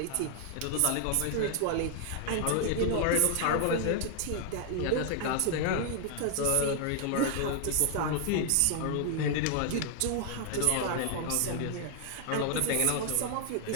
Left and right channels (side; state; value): both; different; correlation 0.00